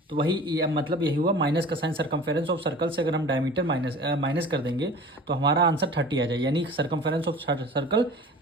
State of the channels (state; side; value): normal; both; correlation 0.41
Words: तो वही मतलब यही हुआ, माइनस का साइन सर्कमफेरेंस ऑफ सर्कल से अगर हम डायमीटर माइनस कर देंगे तो हमारा आंसर 30 आ जाए, यानी सर्कमफेरेंस ऑफ सर्कल